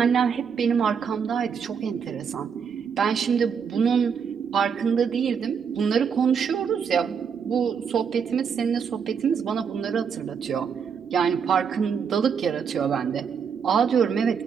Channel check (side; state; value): left; quieter; 6.7 dB